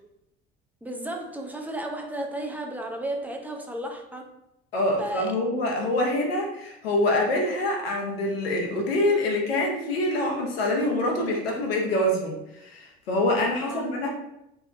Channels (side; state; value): both; normal; correlation 0.10